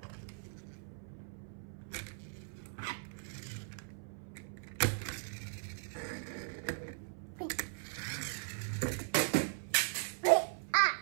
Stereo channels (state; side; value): silent; left; 52 dB below the other